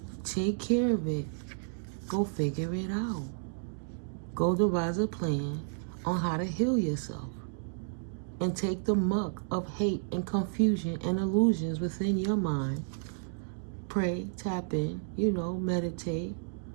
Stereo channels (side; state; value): left; silent; digital silence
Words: Take care of it. Go figure it out. Go devise a plan on how to heal yourself. and take the muck of hate and confusion and illusions within your mind. Pray, tap in, meditate.